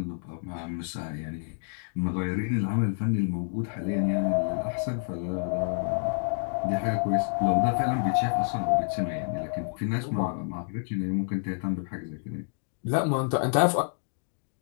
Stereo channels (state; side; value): silent; right; digital silence